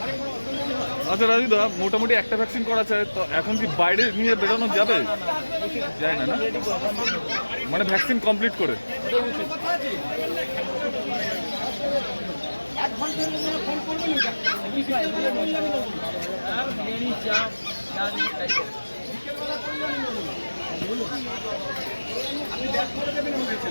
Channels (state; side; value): inverted; both; correlation -1.00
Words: আচ্ছা রাজু দা, মোটামুটি একটা ভ্যাকসিন করা চাই তো এখন কি বাইরে নিয়ে বেরোনো যাবে? যায় না, না? মানে ভ্যাকসিন কমপ্লিট করে?